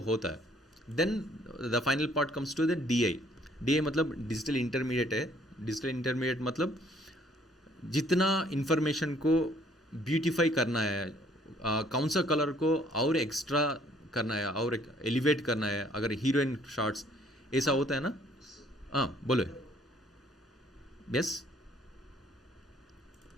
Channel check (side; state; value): both; normal; correlation 0.61